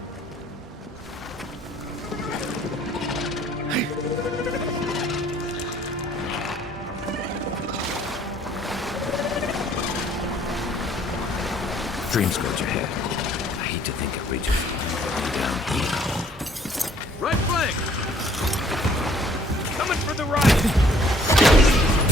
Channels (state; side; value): normal; both; correlation 0.59